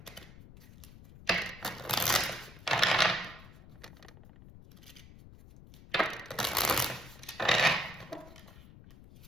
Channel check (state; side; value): noise; left; rumble, 19 dB below the sound